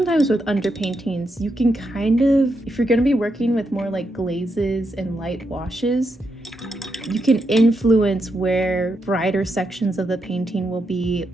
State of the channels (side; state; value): both; normal; correlation 0.83